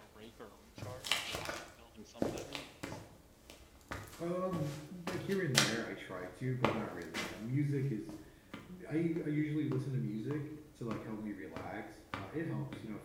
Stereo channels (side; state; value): both; identical; correlation 1.00